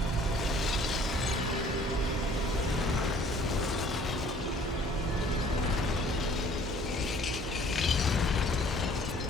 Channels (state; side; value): normal; both; correlation 0.55